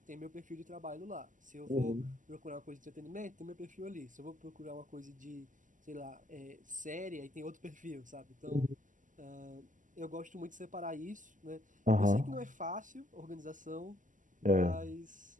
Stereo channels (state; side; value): late; left; 0.37 ms